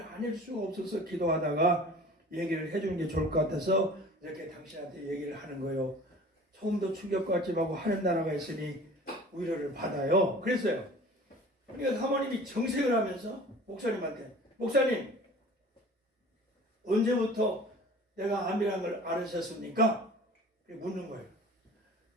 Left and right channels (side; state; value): both; normal; correlation 0.44